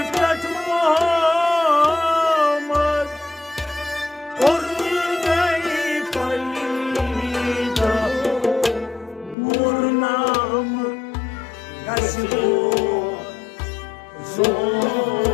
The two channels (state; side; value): drops out; right; at 9.3 s